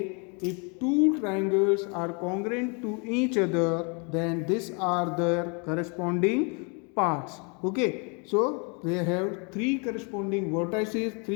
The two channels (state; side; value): quieter; right; 34.4 dB